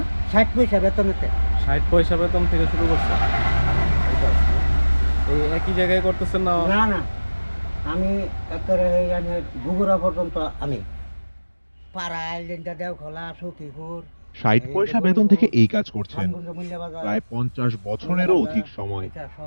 60 পয়সা বেতনের থেকে। 60 পয়সা বেতন থেকে শুরু করছেন? এটা আছে। এই একই জায়গায় করতেছেন না? না না, আমি একেবারে এখানে বগুড়া পর্যন্ত আমি পাড়া আইল্যান্ডা দেওখোলা সখীপুর ৬০ এই যে পয়সা বেতন থেকে গরুপুর এই কাজ করছেন ধানগুন্ড মূল্য বাজার প্রায় ৫০ মূল্য বছরেরও বাজার অধিক সময়। এটা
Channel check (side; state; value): both; inverted; correlation -1.00